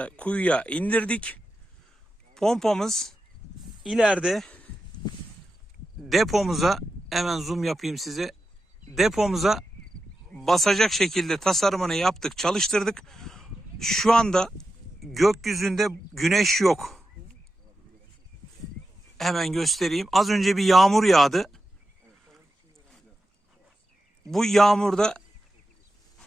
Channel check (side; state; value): both; normal; correlation 0.89